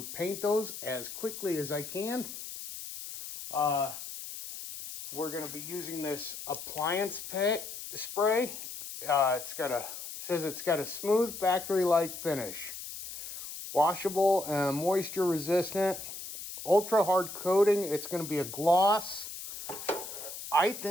paint those as quickly as I can. We're going to be using this appliance spray. Says it's got a smooth factory-like finish. Washable and moisture resistant. Ultra hard coating. It's going to be a gloss. I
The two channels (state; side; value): noise; left; hiss, 10 dB below the sound